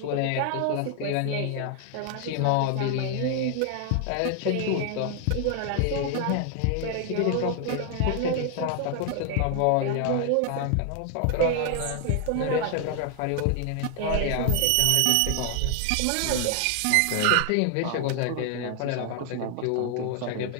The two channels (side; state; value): both; different; correlation 0.00